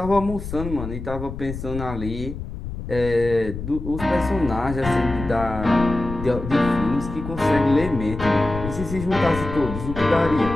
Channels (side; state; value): left; noise; rumble, 8 dB below the sound